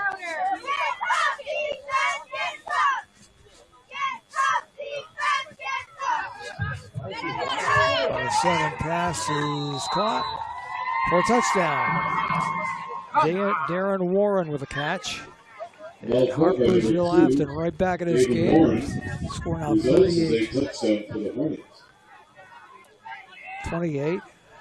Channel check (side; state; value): both; identical; correlation 1.00